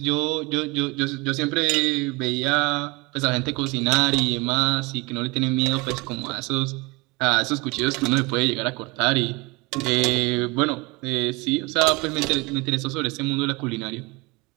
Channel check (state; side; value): quieter; left; 25.6 dB